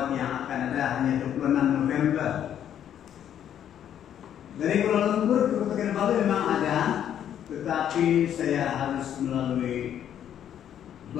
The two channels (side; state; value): right; quieter; 9.9 dB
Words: yang akan ada hanya 26 November. Dari Kuala Lumpur ke Kota Kinabalu memang ada, tetapi saya harus melalui